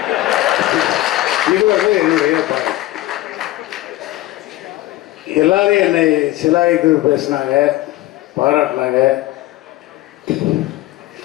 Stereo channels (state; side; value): quieter; right; 16.6 dB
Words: இது என்னுடைய பணம். எல்லாரும் என்னை சிலாய்த்து பேசினாங்க, பாராட்டினாங்க.